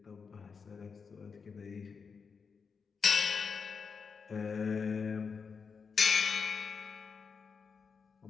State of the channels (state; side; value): quieter; right; 5.6 dB